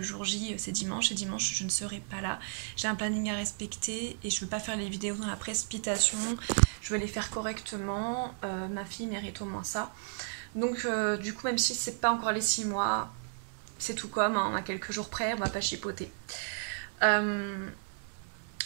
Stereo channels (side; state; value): left; silent; 56 dB below the other